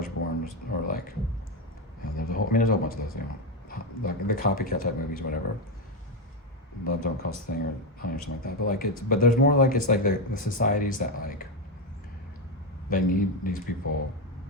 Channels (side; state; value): both; normal; correlation 0.08